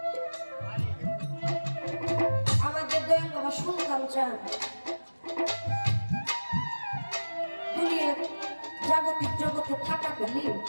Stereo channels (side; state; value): both; inverted; correlation -1.00